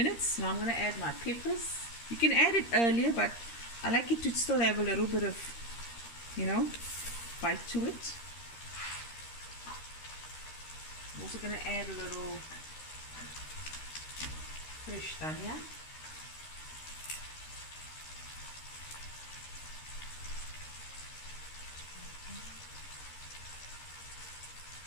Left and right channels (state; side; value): late; right; 13 ms